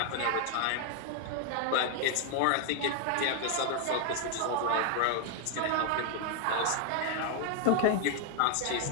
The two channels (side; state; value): both; different; correlation 0.01